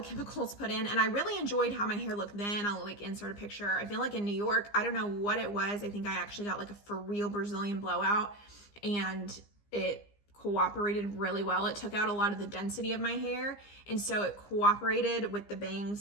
put in, and I really enjoyed how my hair looked then. I'll like insert a picture. I feel like in New York, I don't know what it was. I think I actually got like a for real Brazilian blowout, and it cooperated really well. It took out a lot of the density of my hair, and so it cooperated with the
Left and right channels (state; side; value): late; right; 15 ms